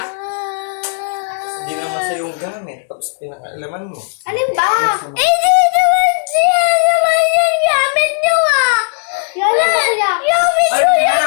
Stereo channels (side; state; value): right; silent; digital silence